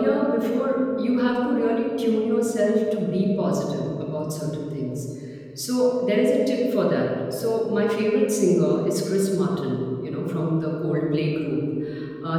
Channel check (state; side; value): identical; both; correlation 1.00